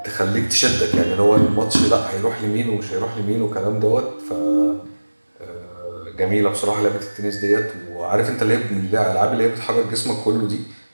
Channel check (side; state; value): both; inverted; correlation -1.00